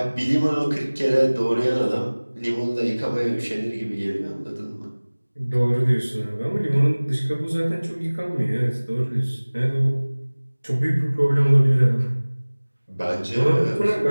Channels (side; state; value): both; inverted; correlation -1.00